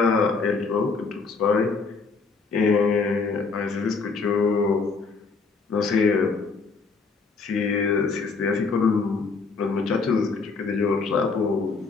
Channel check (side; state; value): right; quieter; 4.5 dB